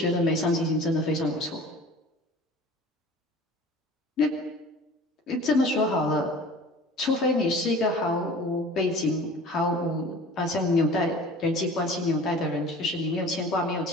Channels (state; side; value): normal; both; correlation 0.43